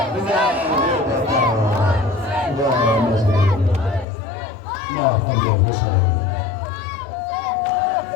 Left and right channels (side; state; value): right; drops out; at 4.0 s